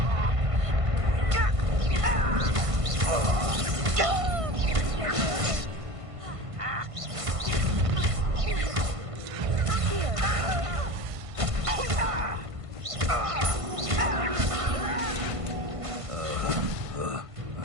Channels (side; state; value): left; late; 1.5 ms